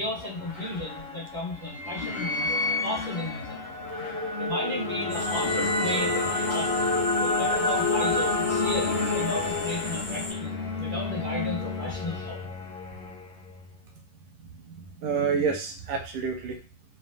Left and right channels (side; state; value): left; late; 11 ms